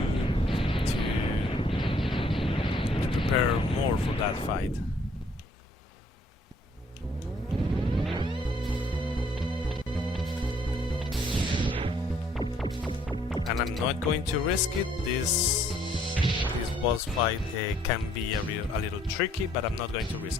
prepare more for that fight. And I'm not going to risk it. This boss fight can be a little tricky, but I'm not going to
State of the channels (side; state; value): both; normal; correlation 0.64